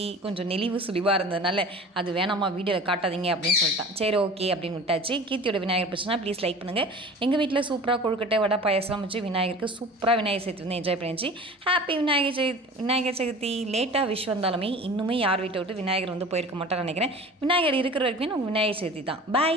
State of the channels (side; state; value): both; normal; correlation 0.40